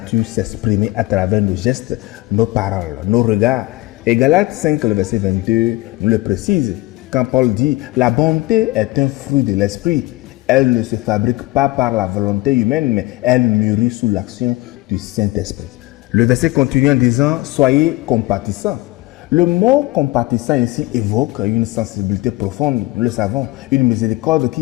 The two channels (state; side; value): quieter; right; 20.1 dB